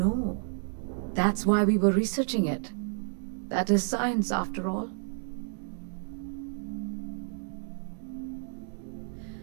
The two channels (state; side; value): silent; left; 57 dB below the other